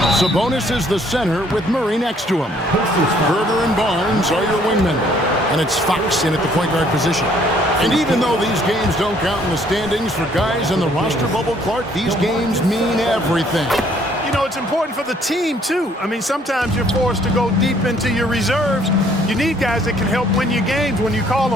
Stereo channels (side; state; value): both; normal; correlation 0.63